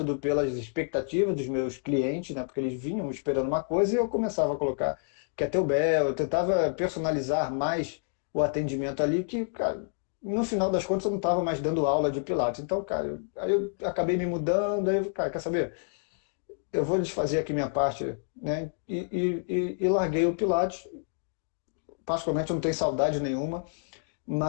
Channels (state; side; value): silent; right; digital silence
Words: pelas expectativas dos meus clientes, né? Porque eles vinham esperando uma coisa e eu começava a colocar kettlebell, eu tentava personalizar mais o atendimento ali, que, cara, no final das contas eu não estava mais dando aula de Pilates. Então, cara, aí eu acabei me mudando, aí, cara, quer saber? Eu vou desfazer aqui minha parte, né? E larguei o Pilates. Particularmente eu não tenho saudade nenhuma.